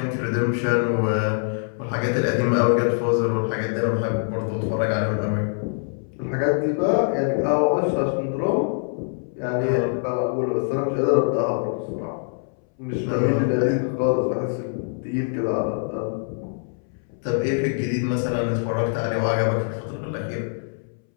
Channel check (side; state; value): right; silent; 63 dB below the other